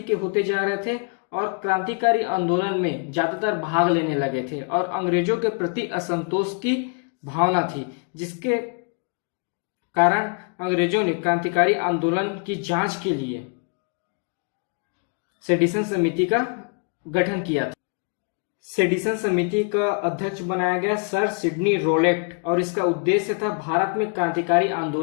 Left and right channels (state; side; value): quieter; right; 38.4 dB